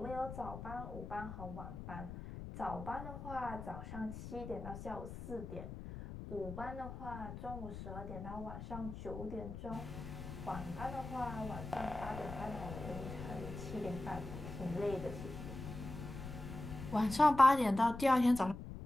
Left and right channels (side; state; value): left; noise; rumble, 9 dB below the sound